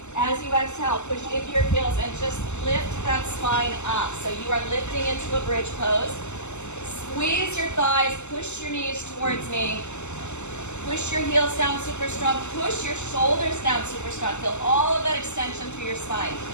As you exhale, push into your heels and just lift that spine up. So you are lifting into a bridge pose. Squeeze your thighs, push your knees towards me. Push your heels down super strong. Push your shoulders down super strong. Feel all of that extension through your spine.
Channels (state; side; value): late; right; 0.83 ms